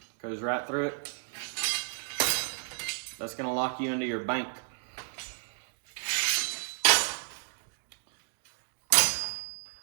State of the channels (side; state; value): left; silent; digital silence